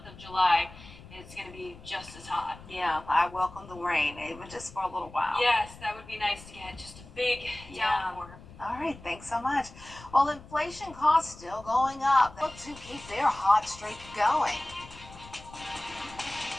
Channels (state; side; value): noise; left; rumble, 18 dB below the sound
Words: of July, it's going to be just as hot. Yeah, I welcome the rain, even just for a little while. Yes, that would be nice to get just a big downpour. All right, thanks so much. Well, inflation costs still going up. Look to keep their hot streak going.